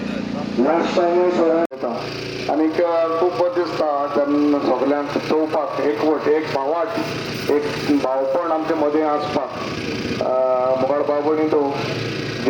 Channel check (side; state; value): both; identical; correlation 1.00